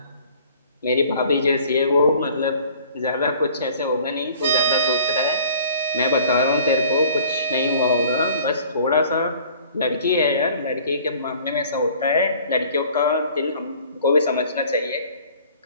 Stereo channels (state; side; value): inverted; both; correlation -0.52